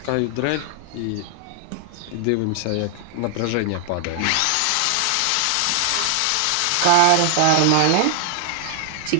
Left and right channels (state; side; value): different; both; correlation 0.00